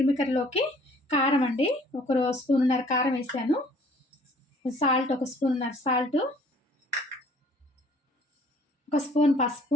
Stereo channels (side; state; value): both; normal; correlation 0.57